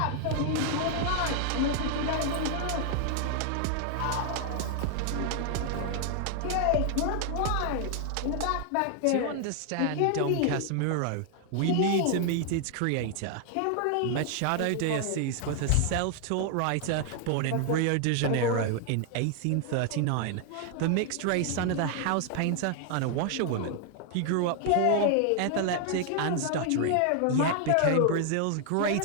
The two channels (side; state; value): both; different; correlation 0.00